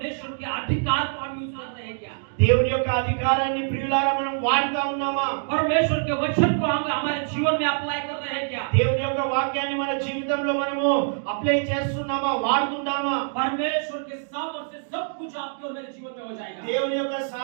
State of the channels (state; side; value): silent; left; digital silence